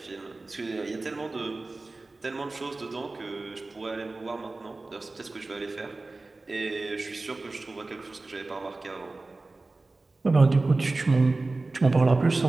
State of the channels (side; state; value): left; quieter; 3.3 dB